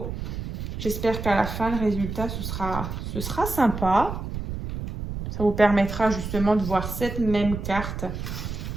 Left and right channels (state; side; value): noise; right; rumble, 6 dB below the sound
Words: J'espère qu'à la fin, le résultat, ce sera sympa. Ça vous permettra justement de voir cette même carte